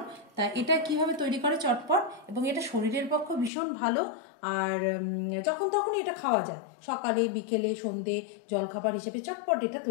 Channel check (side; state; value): right; drops out; at 3.5 s